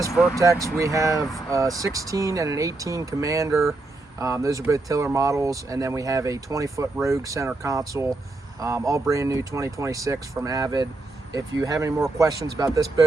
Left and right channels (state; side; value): quieter; left; 3.1 dB